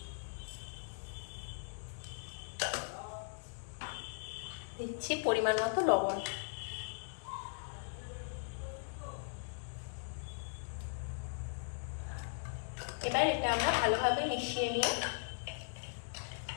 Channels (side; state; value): right; silent; digital silence